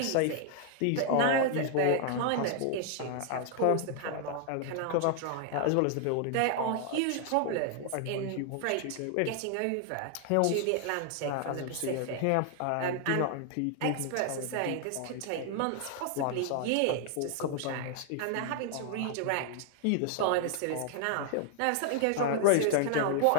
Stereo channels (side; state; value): both; different; correlation 0.00